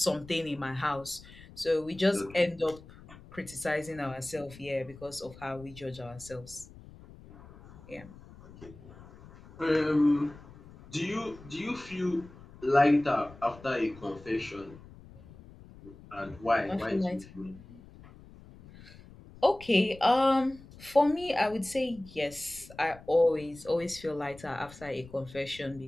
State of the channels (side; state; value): left; noise; rumble, 20 dB below the sound